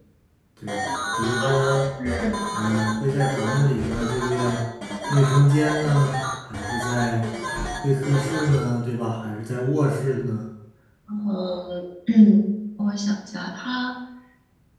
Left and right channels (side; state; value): both; identical; correlation 1.00